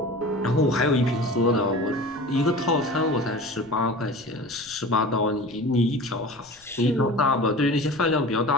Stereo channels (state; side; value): noise; left; rumble, 29 dB below the sound